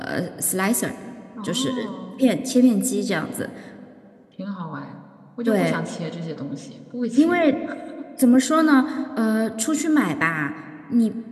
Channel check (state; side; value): identical; both; correlation 1.00